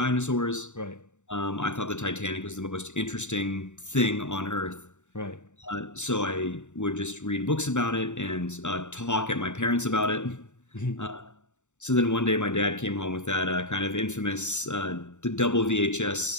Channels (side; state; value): right; late; 0.84 ms